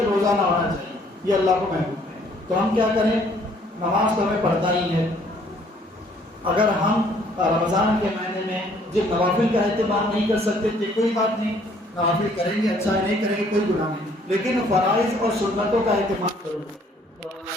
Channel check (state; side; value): normal; both; correlation 0.61